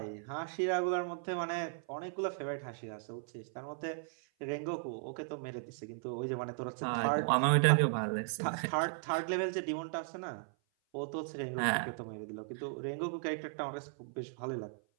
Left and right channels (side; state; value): left; silent; 53 dB below the other